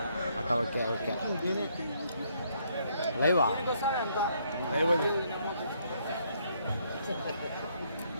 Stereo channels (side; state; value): both; inverted; correlation -0.70